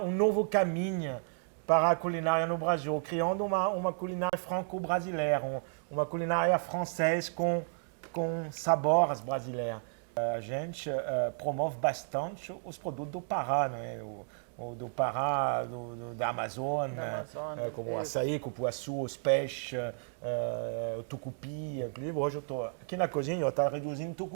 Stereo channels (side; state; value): left; silent; digital silence